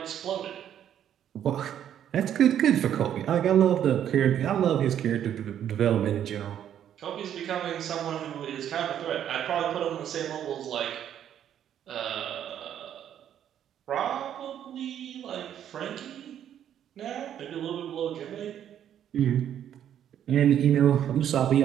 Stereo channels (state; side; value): quieter; left; 10.1 dB